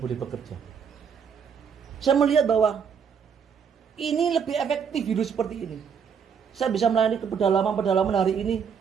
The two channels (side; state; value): left; quieter; 6.9 dB